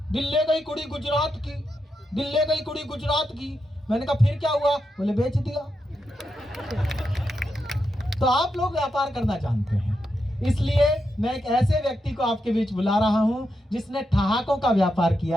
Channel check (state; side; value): normal; both; correlation 0.85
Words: दिल्ली गई कुड़ी गुजरात की, दिल्ली गई कुड़ी गुजरात की। मैंने कहा फिर क्या हुआ? बोले बेच दिया। तो आप लोग व्यापार करना जानते हैं, इसलिए मैं एक ऐसे व्यक्ति को आपके बीच बुला रहा हूं जिसने ठहाकों का व्यापार